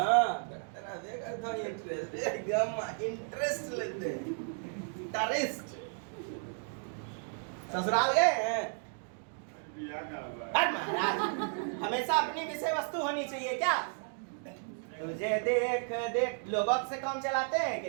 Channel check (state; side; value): silent; left; 55 dB below the other